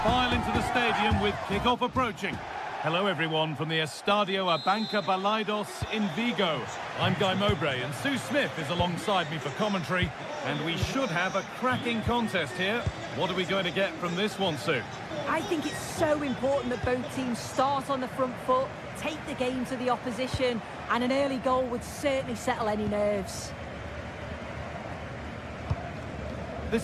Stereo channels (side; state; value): both; identical; correlation 1.00